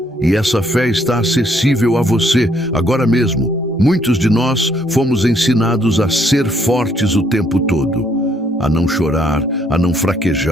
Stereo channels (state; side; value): normal; both; correlation 0.68